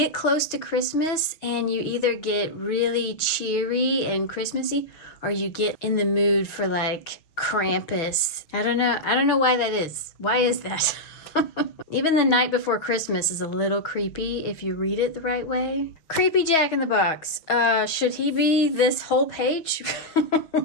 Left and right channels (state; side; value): late; right; 6.2 ms